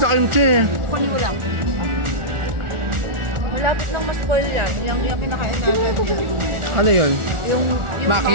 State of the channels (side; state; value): left; late; 1.4 ms